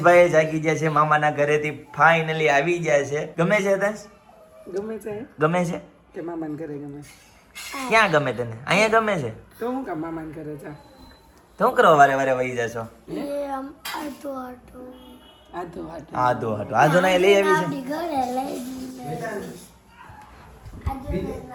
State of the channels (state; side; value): identical; both; correlation 1.00